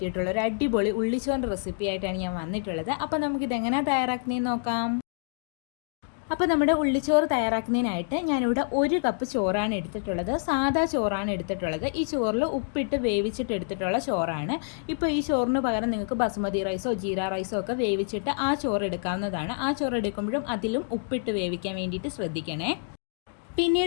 ഒരു അടിപൊളി ഉള്ളിച്ചോറിൻ്റെ റെസിപ്പി ആയിട്ടാണ് ഞാൻ വന്നിട്ടുള്ളത്. അപ്പോൾ നമുക്കിതെങ്ങനെയാണ് തയ്യാറാക്കുന്നതെന്ന് നോക്കാം. അപ്പോൾ നമ്മുടെ ഉള്ളിച്ചോറ് തയ്യാറാക്കുന്നതിനായിട്ട് ഞാനിവിടെ 1 കപ്പ് ചോറാണ് എടുത്തിട്ടുള്ളത്. സാധാ ചോറാണ് എടുത്തിട്ടുള്ളത്. ഈ ചോറിൽ ഉപ്പിട്ട് വേവിച്ചിട്ട് എടുത്തിട്ടുള്ള ചോറാണ്. ഇപ്പോൾ ഈ ചോറിന് പകരം നിങ്ങൾക്ക് ബസുമതി റൈസോ ജീര റൈസോ ഒക്കെ വേവിച്ചിട്ട് ആ ചോറ് എടുക്കാവുന്നതാണ്. ആ ചോറ് എടുക്കുമ്പോഴും അതിലും ഉപ്പിട്ട് വേവിക്കാൻ വേണ്ടിയിട്ട് ശ്രദ്ധിക്കണേ.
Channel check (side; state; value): right; silent; digital silence